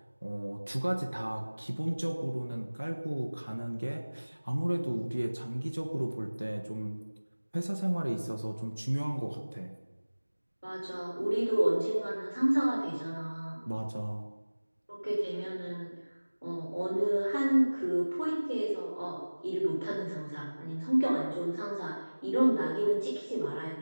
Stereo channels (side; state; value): both; inverted; correlation -1.00